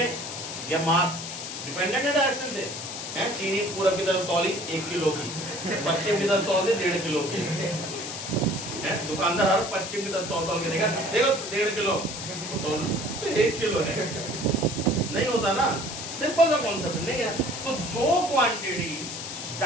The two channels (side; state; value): left; noise; hiss, 7 dB below the sound